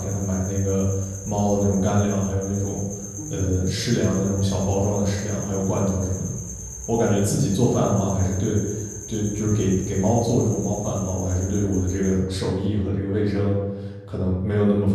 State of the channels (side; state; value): both; identical; correlation 1.00